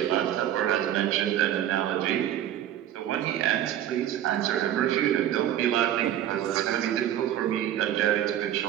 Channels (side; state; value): left; quieter; 11.5 dB